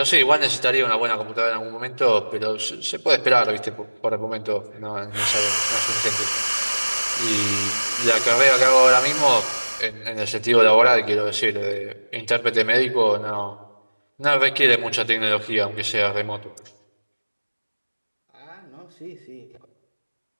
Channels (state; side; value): inverted; both; correlation -1.00